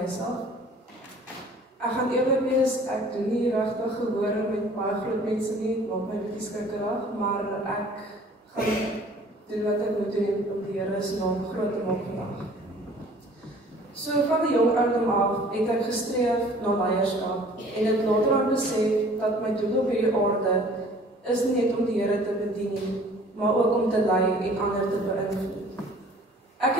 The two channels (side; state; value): both; normal; correlation 0.51